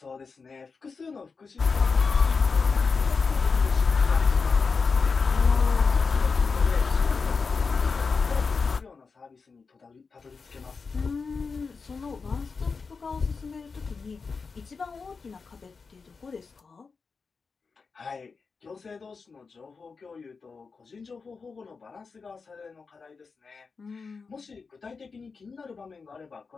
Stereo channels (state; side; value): quieter; right; 4.8 dB